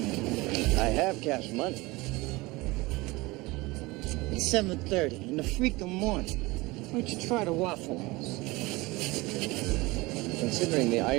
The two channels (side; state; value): left; quieter; 22.3 dB